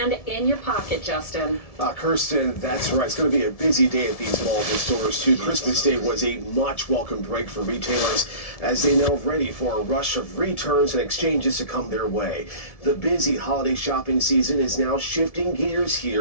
in your pocket, Justin. Kirsten, that's right. It's going to be a busy day at these malls and stores, too. Christmas Day was a much welcome break for retailers as they now ready for a rush of returns and exchanges to come their way. The busy holiday shopping season is now shifting gears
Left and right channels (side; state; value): right; late; 1.7 ms